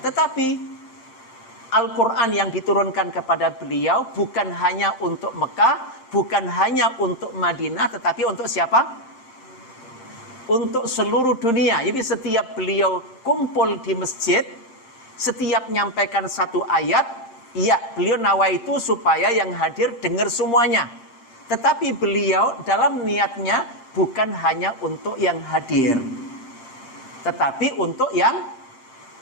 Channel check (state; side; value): late; right; 7.7 ms